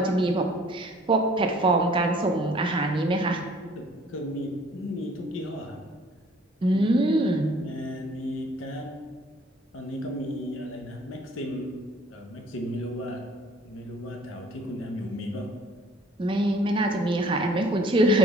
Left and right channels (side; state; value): both; normal; correlation 0.55